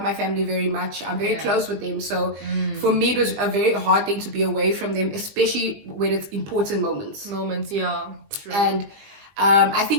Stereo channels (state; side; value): late; left; 20 ms